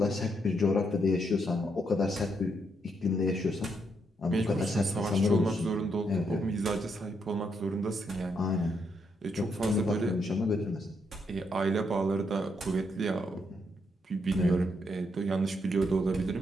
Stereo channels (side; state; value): both; normal; correlation 0.78